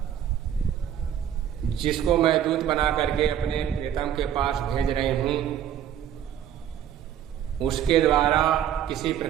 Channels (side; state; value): left; quieter; 10.0 dB